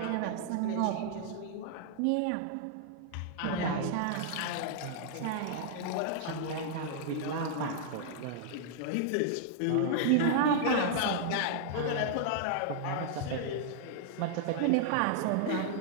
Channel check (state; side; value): different; both; correlation -0.01